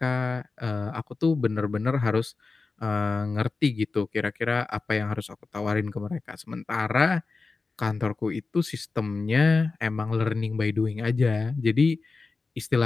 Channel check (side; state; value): right; quieter; 4.0 dB